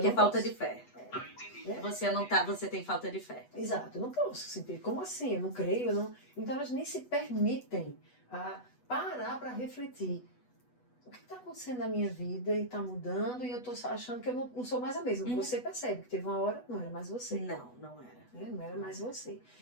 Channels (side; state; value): right; late; 8.1 ms